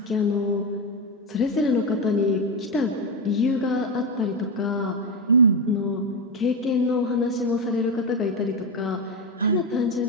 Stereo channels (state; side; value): normal; both; correlation 0.10